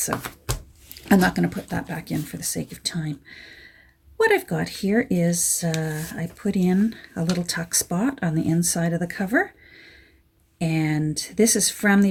I'm not going to put that back in for the sake of time. What I've got here is I put in a little tuck spot on the inside of the cover, and this is from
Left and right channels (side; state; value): both; identical; correlation 1.00